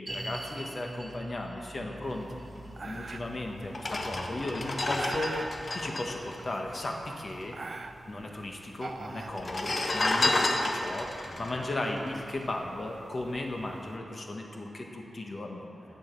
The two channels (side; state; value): both; normal; correlation 0.94